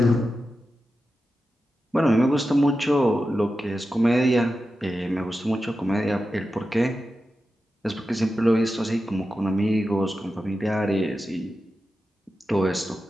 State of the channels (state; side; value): normal; both; correlation 0.91